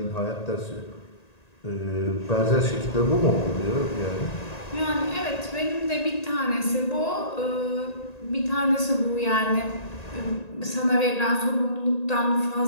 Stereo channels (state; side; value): late; right; 1.9 ms